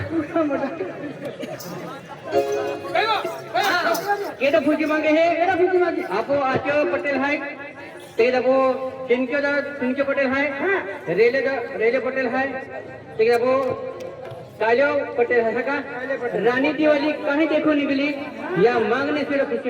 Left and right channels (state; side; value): identical; both; correlation 1.00